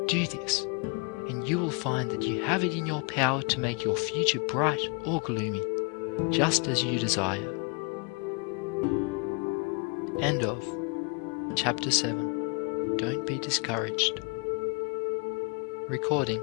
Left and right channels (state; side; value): quieter; right; 32.2 dB